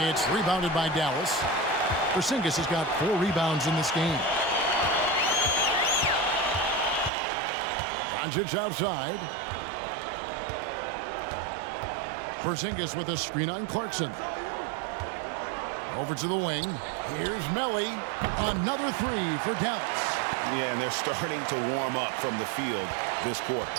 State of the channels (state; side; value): drops out; left; at 7.1 s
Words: It's rebounded by Dallas. Porzingis has got 4 rebounds in this game. Doncic outside. Porzingis with a screen on Clarkson. Over to the wing. Here's Melli. Another 3 for Dallas. Yeah, and they're starting to warm up from the field this quarter.